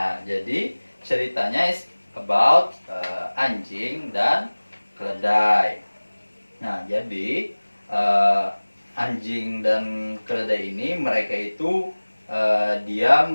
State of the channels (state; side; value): inverted; both; correlation -1.00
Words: jadi ceritanya is about anjing dan keledai. Nah, jadi anjing dan keledai ini mereka itu diam